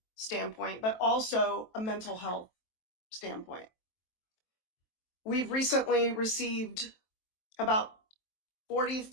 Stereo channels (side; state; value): right; late; 23 ms